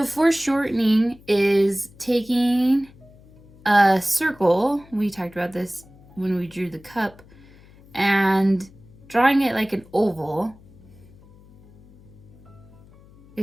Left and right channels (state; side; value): noise; left; hum, 25 dB below the sound